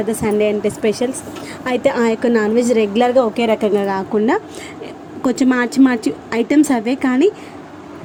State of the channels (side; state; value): both; identical; correlation 1.00